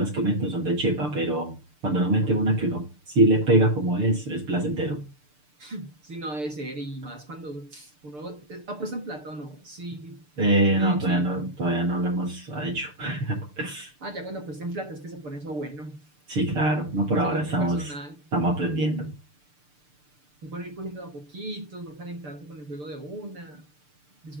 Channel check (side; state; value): left; late; 6.7 ms